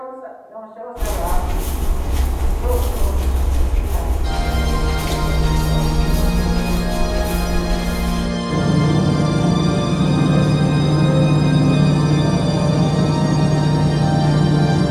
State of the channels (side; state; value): both; identical; correlation 1.00